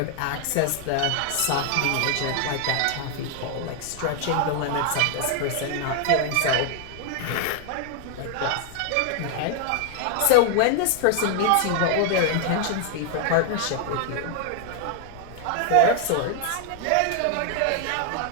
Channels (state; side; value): different; both; correlation 0.00